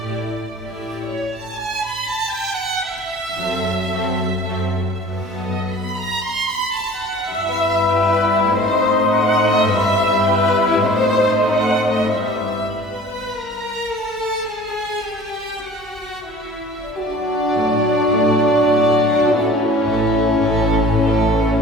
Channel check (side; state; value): both; normal; correlation 0.46